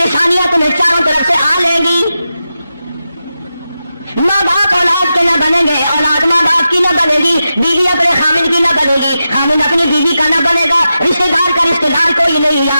تمہیں چاروں طرف سے آ لیں گی، ماں باپ اولاد کے نہ بنیں گے، اولاد ماں باپ کی نہ بنے گی، بیوی اپنے خامد کی نہ بنے گی، خامد اپنی بیوی کا نہ بنے گا، رشتے دار کا رشتے دار کوئی نہیں،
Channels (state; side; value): inverted; both; correlation -0.90